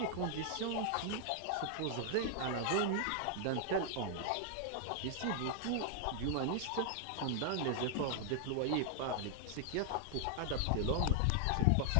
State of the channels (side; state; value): both; different; correlation 0.00